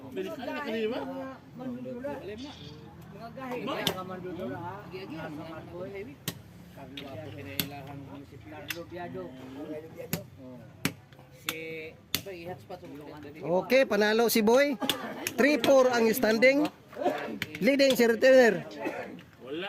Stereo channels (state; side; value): identical; both; correlation 1.00